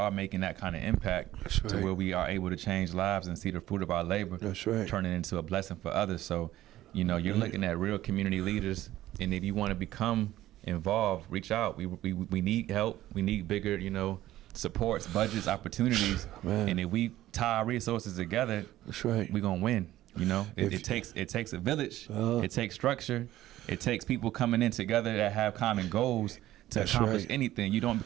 making that kind of impact That's to right. where we are able to change lives and see the fruit of our labor. That's right. Turn it into a blessing for others. So, you're looking at real community leaders, and if you want to become involved, reach out. We need help. We need bigger, supports, budgets, opportunities. Man. And if we tie our resources together, That's right. we're gonna win. If- It takes a village. Uh-huh. It takes structure. It takes people coming in together that have common goals to That's accomplish right. anything. You don't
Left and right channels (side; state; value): left; quieter; 14.6 dB